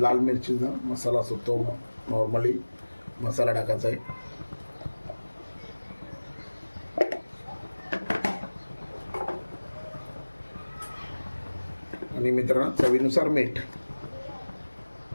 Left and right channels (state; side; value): inverted; both; correlation -1.00